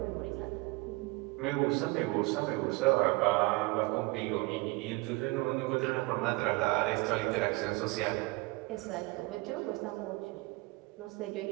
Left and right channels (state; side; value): quieter; left; 24.1 dB